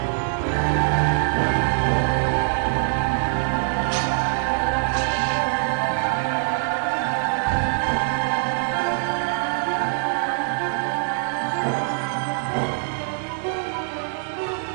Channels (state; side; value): silent; left; digital silence